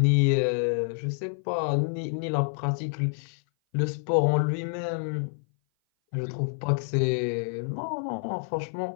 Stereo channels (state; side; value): silent; right; 57 dB below the other